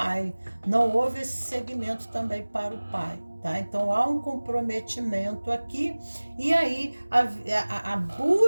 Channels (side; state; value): both; inverted; correlation -1.00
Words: não houve esse segmento também para o pai, tá? Então há um comprometimento aqui, e aí a